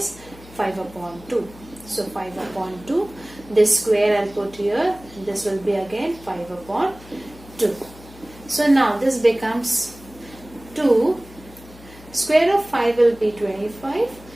5 upon 2. So 5 upon 2. This square I'll put here. This will be again 5 upon 2. So now this becomes 2. Square of 5 will be 25.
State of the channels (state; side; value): noise; left; hum, 20 dB below the sound